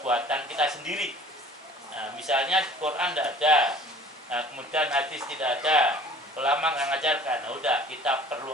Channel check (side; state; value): both; normal; correlation 0.48